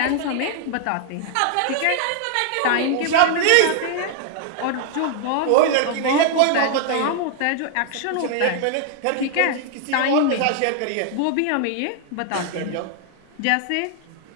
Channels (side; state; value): both; different; correlation 0.00